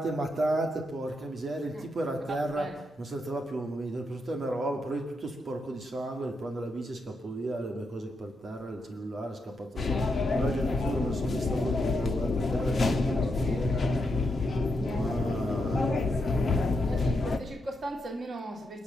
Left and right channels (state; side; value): normal; both; correlation 0.83